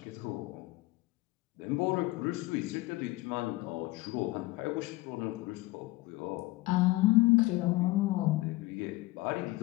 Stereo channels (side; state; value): right; quieter; 20.1 dB